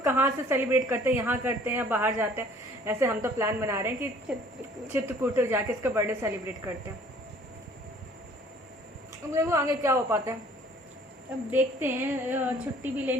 कहाँ से सेलिब्रेट करते हैं, यहाँ करते हैं या बाहर जाते हैं, ऐसे हम तो प्लान बना रहे हैं कि चित्रकूट जाके इसका बर्थडे सेलिब्रेट करते हैं। अब देखो आगे क्या हो पाता है। अब देखते हैं, छुट्टी भी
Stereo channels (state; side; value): normal; both; correlation 0.54